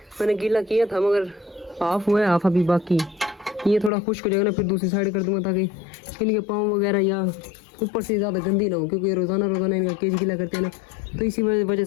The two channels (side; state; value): right; drops out; at 3.9 s